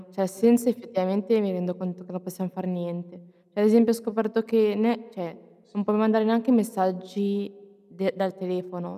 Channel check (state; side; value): identical; both; correlation 1.00